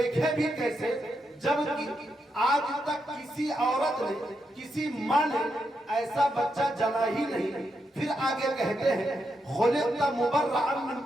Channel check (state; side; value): normal; both; correlation 0.83